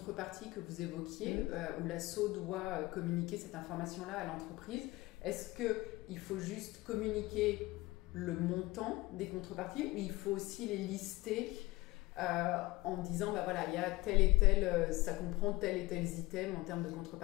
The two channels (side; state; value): right; quieter; 20.3 dB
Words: que vous évoquiez, où l'asso doit communiquer cette information-là à l'entreprise, est-ce qu'il faut juste communiquer le montant des contreparties ou il faut aussi les lister en disant, bah voilà, il y a tel et tel, ça comprend tel et tel item en termes de